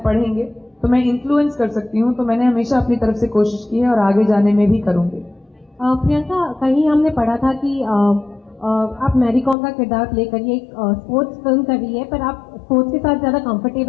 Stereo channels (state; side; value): drops out; right; at 9.6 s